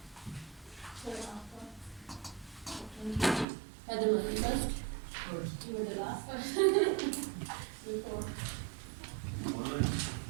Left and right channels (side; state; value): left; drops out; at 3.5 s